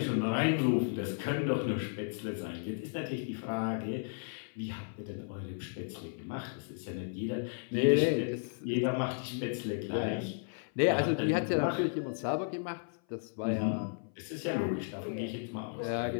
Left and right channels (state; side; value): silent; right; 55 dB below the other